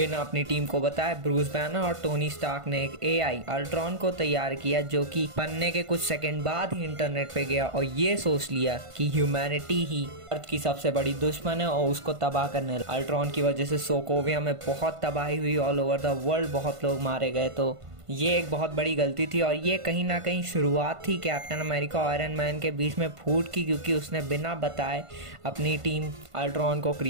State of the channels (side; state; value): left; late; 1.5 ms